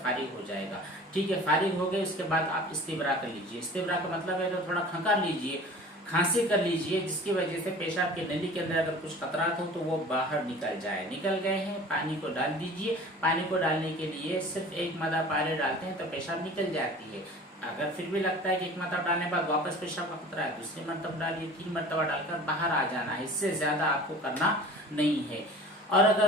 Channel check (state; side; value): normal; both; correlation 0.43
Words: फारिग हो जाएगा। ठीक है, फारिग हो गए, उसके बाद आप इस्तिब्रा कर लीजिए। इस्तिब्रा का मतलब है तो थोड़ा खंकार लीजिए, खांसी कर लीजिए, जिसकी वजह से पेशाब के नली के अंदर अगर कुछ खतरात हो तो वो बाहर निकल जाए। निकल गए हैं, पानी को डाल दीजिए। पानी को डालने के लिए सिर्फ 1 मदद पानी डालते हैं तो पेशाब निकल जाती है। अगर फिर भी लगता है कि 1 मरतबा डालने के बाद वापस पेशाब का खतरा है, दूसरी मरतबा डालिए, 3 मरतबा डालकर बाहर आ जाना है। इससे ज्यादा आपको करना नहीं है। और अगर